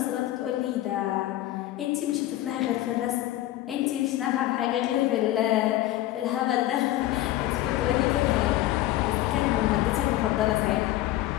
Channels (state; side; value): quieter; right; 15.0 dB